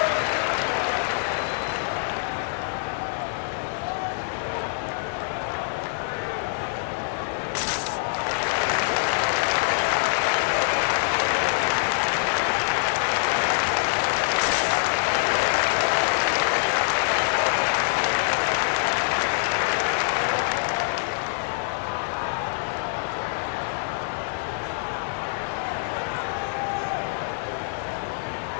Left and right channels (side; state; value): right; silent; 62 dB below the other